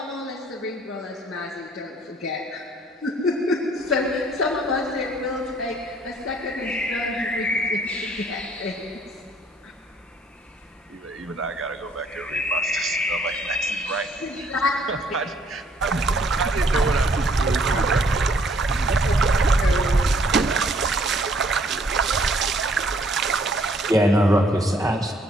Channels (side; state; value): both; normal; correlation 0.63